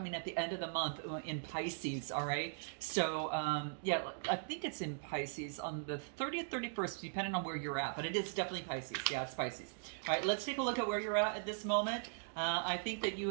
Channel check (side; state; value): left; silent; digital silence